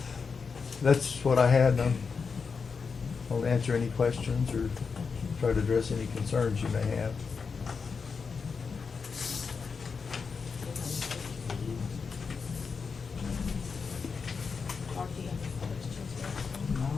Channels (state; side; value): quieter; right; 5.3 dB